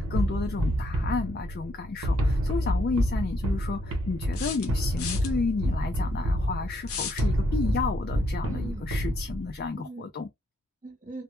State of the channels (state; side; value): normal; both; correlation 0.73